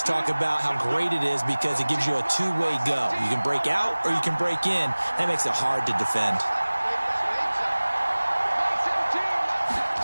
talk about how great it is because it gives you a two-way go. You can break out or you can break in. That makes it hard to defend.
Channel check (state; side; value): inverted; both; correlation -1.00